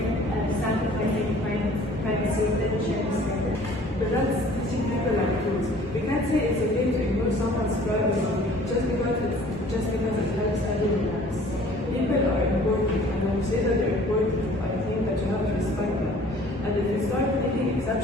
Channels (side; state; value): both; normal; correlation 0.51